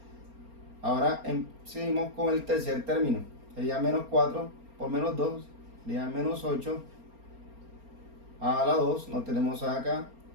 Ahora seguimos con el tercer término, sería menos 4 por menos 2, sería menos 8, a la 2, no tenemos a acá,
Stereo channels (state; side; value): late; left; 4.3 ms